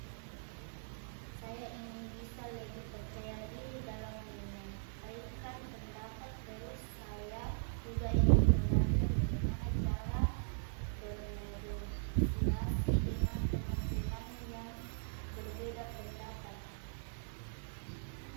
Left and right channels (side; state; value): left; silent; digital silence